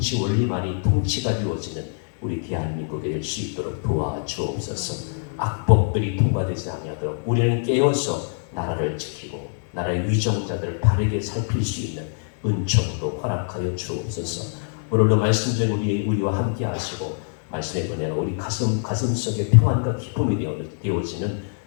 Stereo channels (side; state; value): right; silent; digital silence